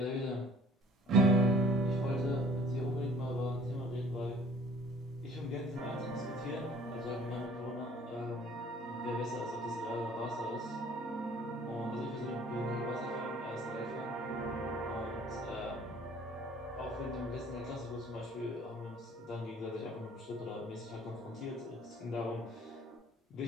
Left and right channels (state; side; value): normal; both; correlation 0.53